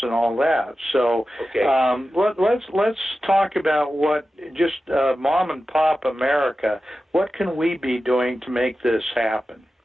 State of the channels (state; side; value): normal; both; correlation 0.93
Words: and all that. So let's talk about what just mom and pop America. What can we be doing to make this happen?